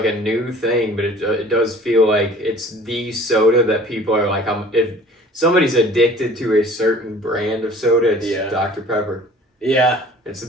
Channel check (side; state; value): both; normal; correlation 0.49